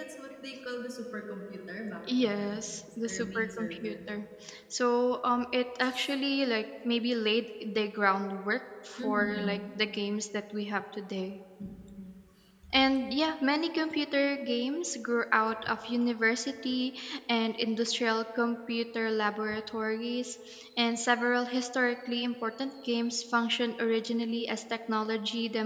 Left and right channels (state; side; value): identical; both; correlation 1.00